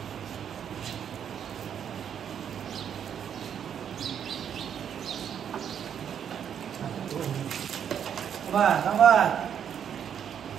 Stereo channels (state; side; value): quieter; left; 8.5 dB